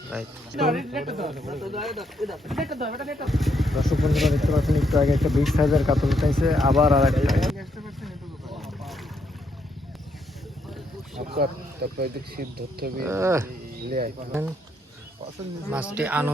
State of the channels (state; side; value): normal; both; correlation 0.76